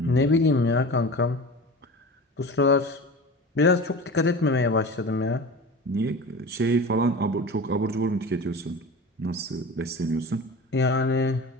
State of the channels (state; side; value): normal; both; correlation 0.33